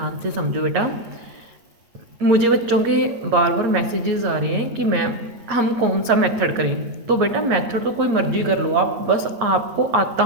से समझो बेटा, मुझे बच्चों के बार बार मैसेजेस आ रहे हैं कि मैम हम कौन सा मेथड करें। तो बेटा मेथड तो कोई मर्जी कर लो आप, बस आपको आता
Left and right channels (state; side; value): late; left; 8.7 ms